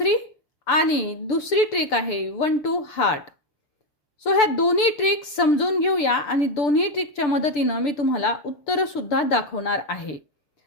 आणि दुसरी ट्रिक आहे 1 2 हार्ट. सो ह्या दोन्ही ट्रिक समजून घेऊया आणि दोन्ही ट्रिकच्या मदतीने मी तुम्हाला उत्तर सुद्धा दाखवणार आहे.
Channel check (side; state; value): right; late; 6.8 ms